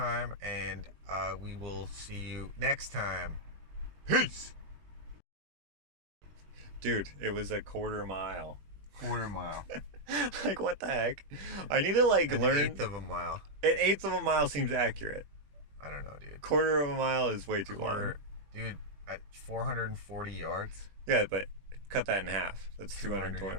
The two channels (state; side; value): late; left; 20 ms